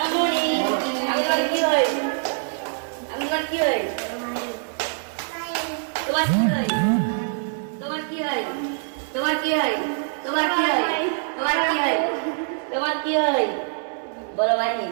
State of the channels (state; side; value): silent; left; digital silence